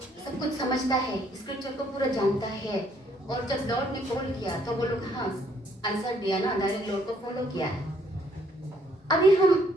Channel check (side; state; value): both; normal; correlation 0.66